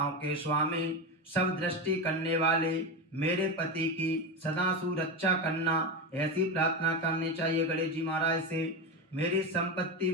के स्वामी सब दृष्टि करने वाले मेरे पति की सदा सुरक्षा करना, ऐसी प्रार्थना करनी चाहिए गणेश जी महाराज से। मेरी संपत्ति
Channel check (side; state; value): both; normal; correlation 0.17